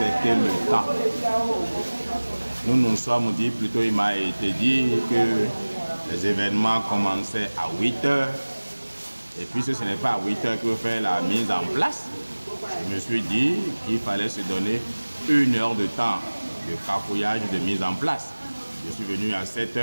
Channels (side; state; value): both; inverted; correlation -1.00